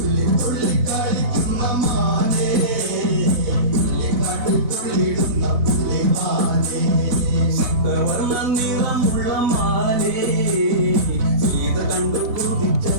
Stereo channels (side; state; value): left; late; 4.1 ms